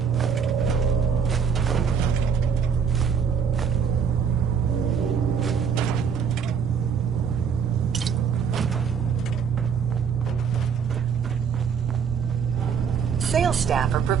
Sales staff are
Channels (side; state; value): left; quieter; 6.9 dB